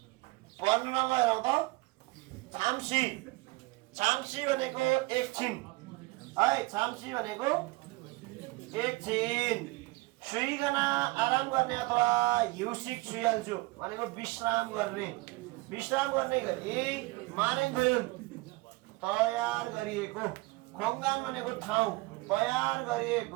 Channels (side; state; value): left; quieter; 23.2 dB